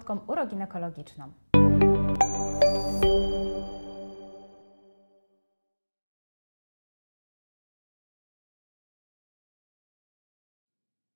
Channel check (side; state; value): both; inverted; correlation -1.00